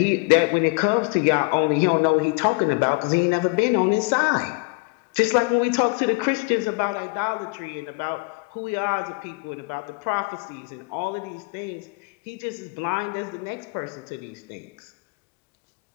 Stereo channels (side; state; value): right; quieter; 29.1 dB